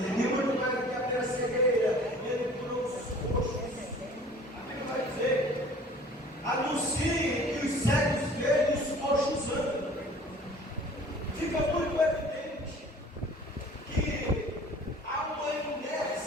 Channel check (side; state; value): both; normal; correlation 0.48